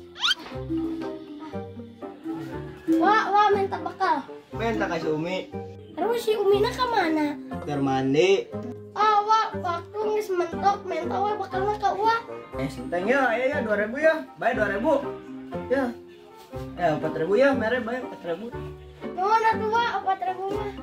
Wah, minta bekal. Minta kasih Umi. Terus si Umina kemana? Biar mandi. Wah, waktu ngis mentok, minta wah bekalnya ke wah. Senteng ya, ya 2.000 ya. Bayar 2.000. Ya. 4.000 ya, mere bayar 4.000. Mana tuh wah, 4.000 mah?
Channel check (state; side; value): identical; both; correlation 1.00